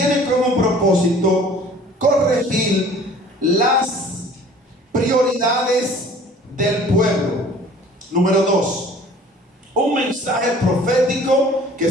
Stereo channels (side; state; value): both; normal; correlation 0.49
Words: como propósito corregir las prioridades del pueblo. Número 2, un mensaje profético que